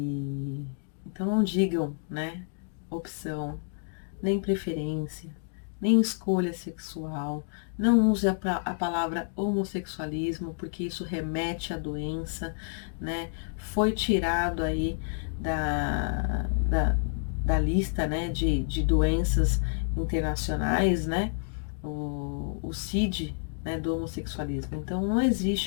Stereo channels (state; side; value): silent; right; digital silence